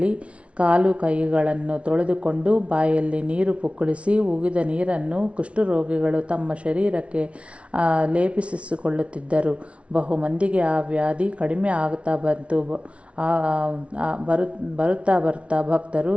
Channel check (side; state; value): left; late; 0.061 ms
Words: ಕಾಲು ಕೈಗಳನ್ನು ತೊಳೆದುಕೊಂಡು ಬಾಯಲ್ಲಿ ನೀರು ಪುಕ್ಕಳಿಸಿ ಉಗಿದ ನೀರನ್ನು ಕುಷ್ಠರೋಗಿಗಳು ತಮ್ಮ ಶರೀರಕ್ಕೆ ಲೇಪಿಸಿಕೊಳ್ಳುತ್ತಿದ್ದರು. ಬಹುಮಂದಿಗೆ ಆ ವ್ಯಾಧಿ ಕಡಿಮೆ ಆಗುತ್ತಾ ಬಂತು. ಬರುತ್ತಾ ಭಕ್ತರು